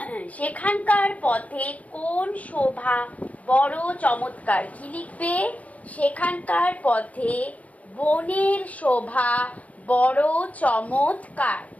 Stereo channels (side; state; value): right; late; 0.069 ms